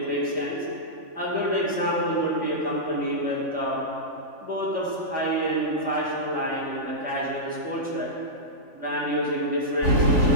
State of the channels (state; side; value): late; left; 3.5 ms